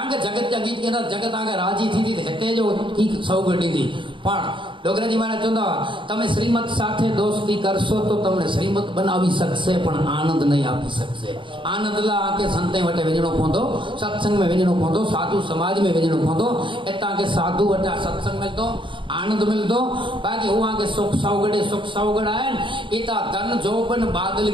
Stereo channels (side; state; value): left; late; 0.24 ms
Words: के जगत जा गीत गेना जगत आगे राजी थी हेते जो की सौगंधी थी पण डोगराजी महाराज चंदा तमे श्रीमत साथे दोस्ती करशो तो तमने श्रीमत बनावी सकशे पण आनंद नहीं आपी सकशे आनंद ला आके संते वटे वेजणो पोंदो सत्संग में वेजणो पोंदो साधु समाज में वेजणो पोंदो एता के साधु वटे सत्संग मिलतो आनंद मिलतो बाकी हुआ के सुख सौगड़ आए इता धन जोबन बादल